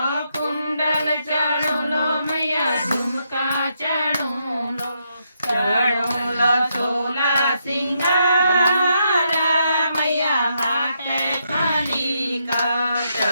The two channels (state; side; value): inverted; both; correlation -0.79